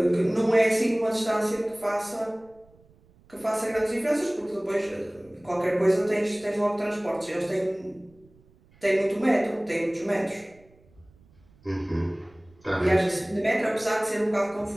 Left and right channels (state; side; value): noise; right; rumble, 30 dB below the sound